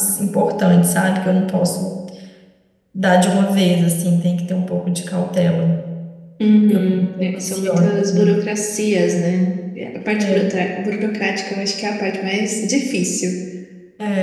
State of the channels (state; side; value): identical; both; correlation 1.00